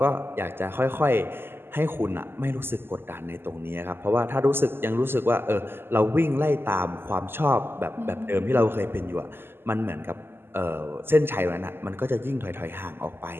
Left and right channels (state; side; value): late; left; 0.11 ms